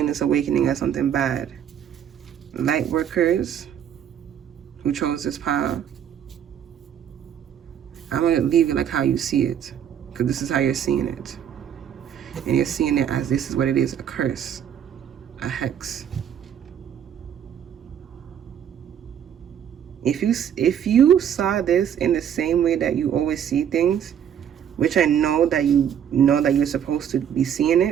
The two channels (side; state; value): left; quieter; 9.2 dB